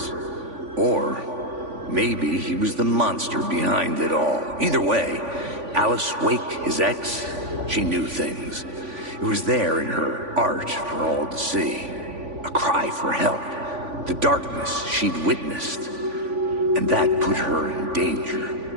Or maybe he was the monster behind it all. Either way, Alice Wake, his ex, she knew things. It was there in her art for all to see. A cry for help. The darkness she'd witnessed. And that put her in danger.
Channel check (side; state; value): left; late; 3.5 ms